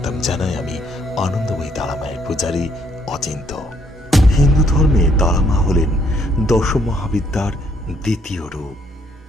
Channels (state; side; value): normal; both; correlation 0.69